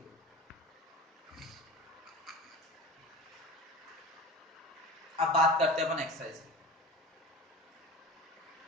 अब बात करते हैं अपन एक्सरसाइज की।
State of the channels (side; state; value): both; normal; correlation 0.34